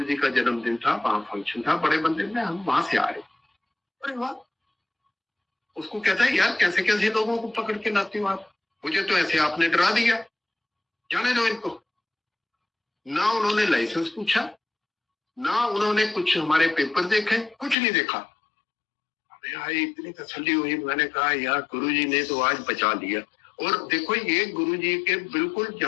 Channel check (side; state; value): right; drops out; at 17.8 s